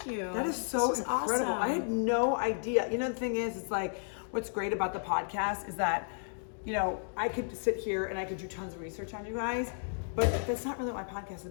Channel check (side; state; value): right; silent; digital silence